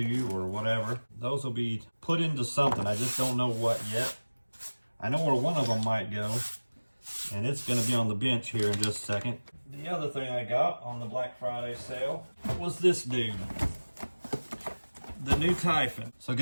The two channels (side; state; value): both; inverted; correlation -1.00